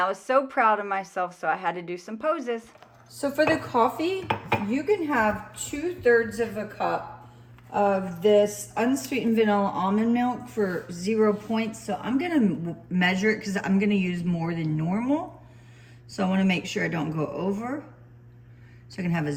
was so proud of myself, so I had to do some poses. So for the coffee, you can have 2/3 of a cup of this unsweetened vanilla almond milk for 0 points. So I'm gonna measure it because I'm gonna use more than normal. So I wanna make sure I don't go over. So I can have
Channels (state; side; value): identical; both; correlation 1.00